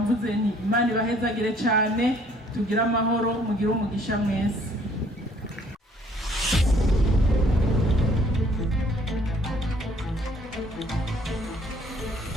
nti Imana ibahezagire cyane, tugire amahoro, mugire umugisha mwese.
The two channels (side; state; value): both; normal; correlation 0.61